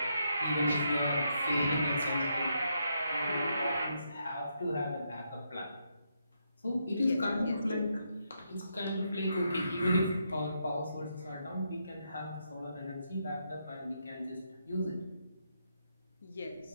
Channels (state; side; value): inverted; both; correlation -0.79